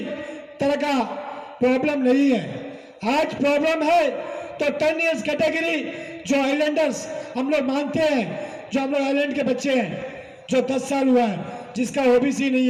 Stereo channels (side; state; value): both; identical; correlation 1.00